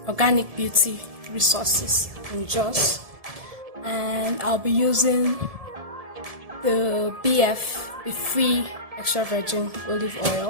Beauty Resources in Jos, and I'll be using the Be Free extra virgin olive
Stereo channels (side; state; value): left; late; 1.7 ms